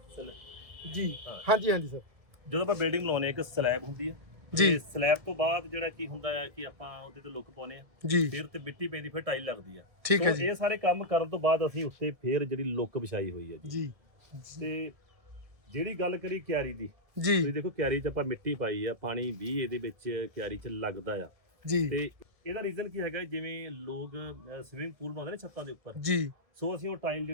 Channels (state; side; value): late; left; 1.7 ms